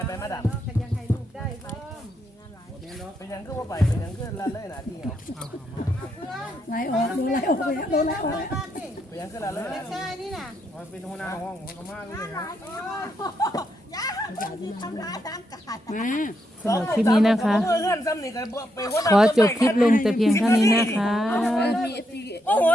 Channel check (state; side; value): normal; both; correlation 0.80